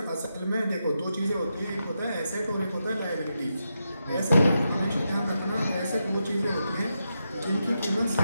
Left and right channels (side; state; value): both; inverted; correlation -0.86